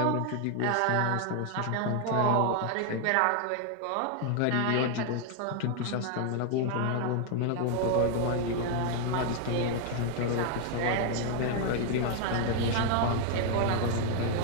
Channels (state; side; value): different; both; correlation 0.00